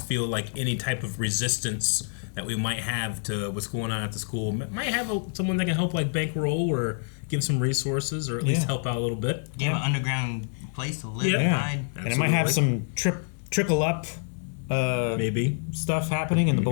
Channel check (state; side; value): silent; right; 60 dB below the other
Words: feel like any type of resistance that we might have to what's going on at the school. Might have someone that can help like bankroll or give some resources or at least help out a little bit. Give an underground place to live and hide. And it might have some trickle up maybe stuff happening in the